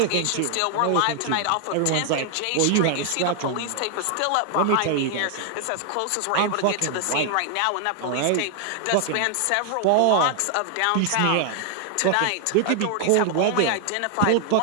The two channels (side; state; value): both; different; correlation 0.00